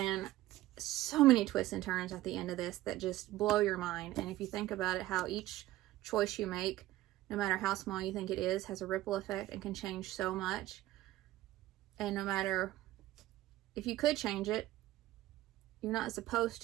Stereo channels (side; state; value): left; quieter; 15.8 dB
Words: so many twists and turns at the end of this that just blow your mind. And if you think about it, how each choice you make, no matter how small you think it is, has a ripple effect and can change so much. And no matter if you could change it, you're not supposed